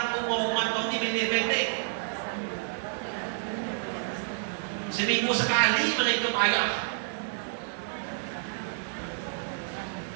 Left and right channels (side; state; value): left; silent; digital silence